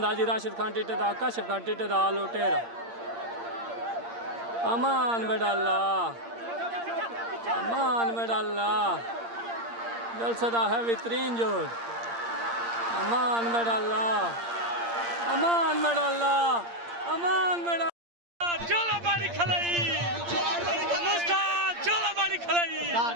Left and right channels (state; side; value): late; left; 8.7 ms